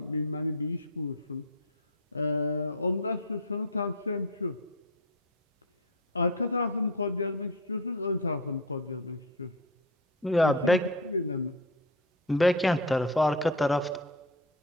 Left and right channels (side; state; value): both; normal; correlation 0.20